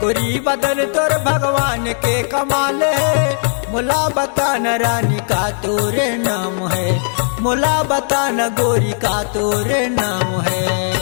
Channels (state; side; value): silent; right; digital silence